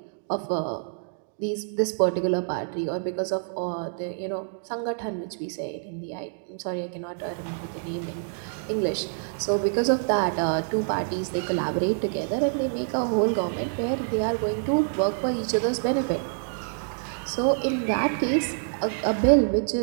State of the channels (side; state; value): left; silent; digital silence